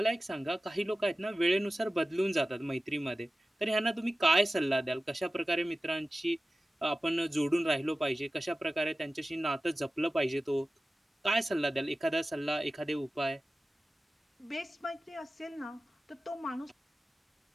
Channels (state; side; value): normal; both; correlation 0.95